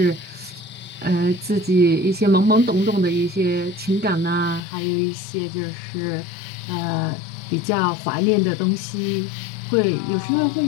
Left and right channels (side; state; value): right; drops out; at 4.6 s